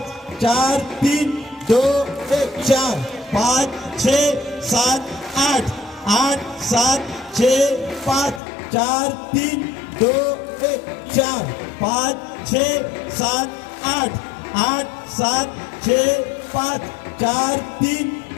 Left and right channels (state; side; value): drops out; right; at 8.4 s